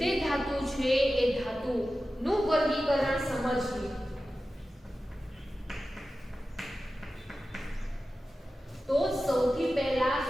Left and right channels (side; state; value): both; normal; correlation 0.94